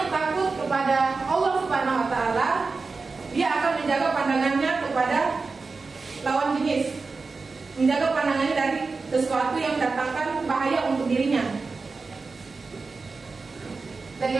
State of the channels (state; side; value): quieter; left; 4.2 dB